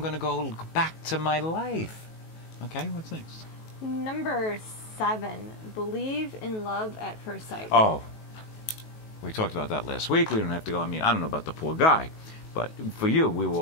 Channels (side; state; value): right; late; 19 ms